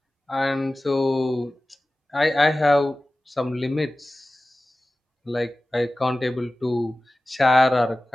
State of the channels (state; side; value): normal; both; correlation 0.96